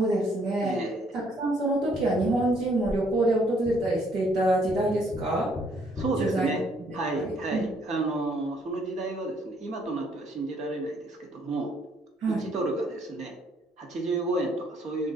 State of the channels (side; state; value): both; normal; correlation 0.66